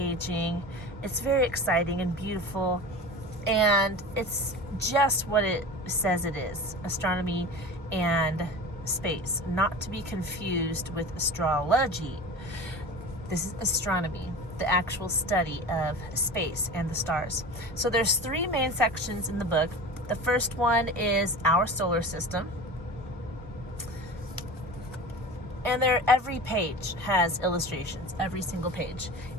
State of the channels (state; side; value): normal; both; correlation 0.33